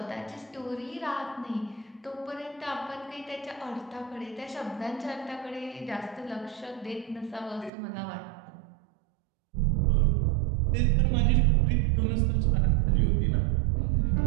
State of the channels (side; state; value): left; drops out; at 7.7 s